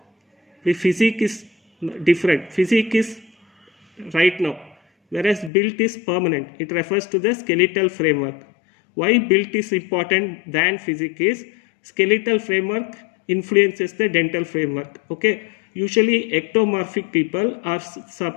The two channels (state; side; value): drops out; right; at 5.5 s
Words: the physique is different. Physique is right now, whereas build is permanent. It refers to the skeletal framework. Why build is important than physique is skeletal framework influences the dental framework. Okay, usually ectomorphic people are